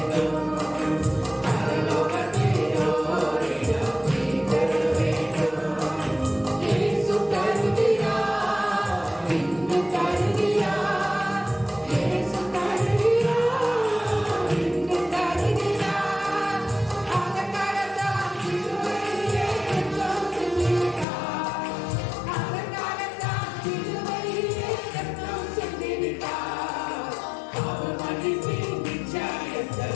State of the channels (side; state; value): right; drops out; at 21.1 s